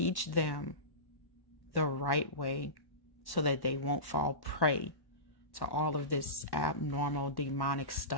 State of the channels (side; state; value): right; late; 1.1 ms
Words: them the right way so that they won't fall prey to all of this abnormal, demonic